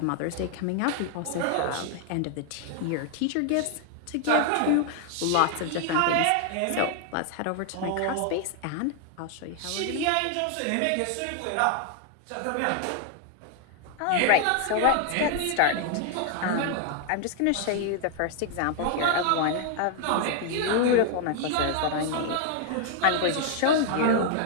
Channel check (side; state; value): both; different; correlation 0.00